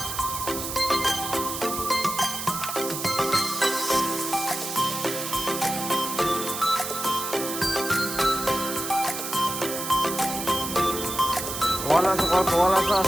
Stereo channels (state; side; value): noise; right; hiss, 5 dB below the sound